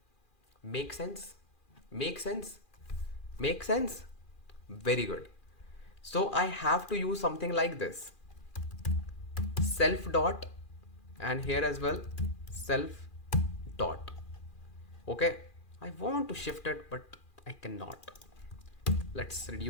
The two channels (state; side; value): late; right; 2.4 ms